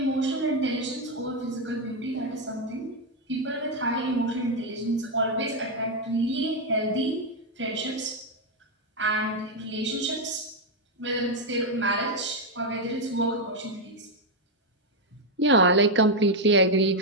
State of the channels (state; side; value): normal; both; correlation 0.02